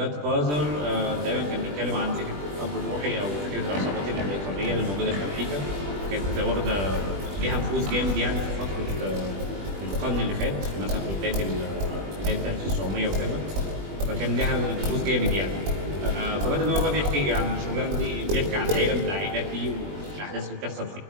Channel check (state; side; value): late; left; 20 ms